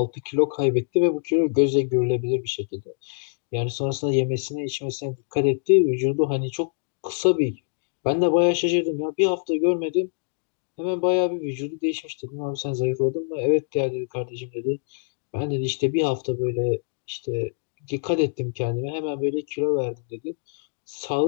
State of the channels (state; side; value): silent; right; digital silence